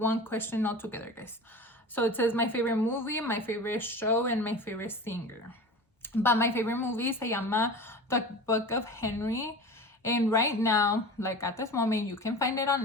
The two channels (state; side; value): normal; both; correlation 0.34